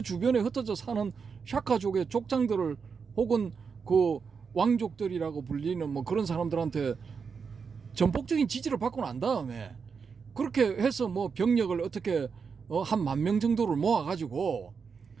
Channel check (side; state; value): left; quieter; 5.7 dB